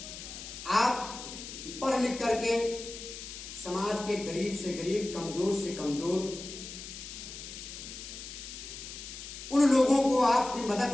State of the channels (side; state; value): left; noise; hiss, 11 dB below the sound